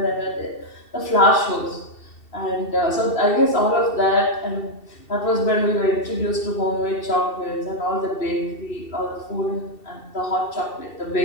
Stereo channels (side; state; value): right; late; 2.7 ms